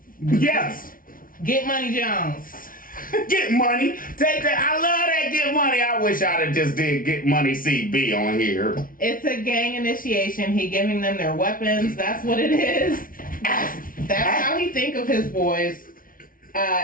Yes. Get money, Jones. Get money. Take that. I love that get money. I wish I'd have just did get money CB on here. It's a gang initiation. He giving them their weapons. That's what it is. That's how he think of his boys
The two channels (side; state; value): right; late; 0.40 ms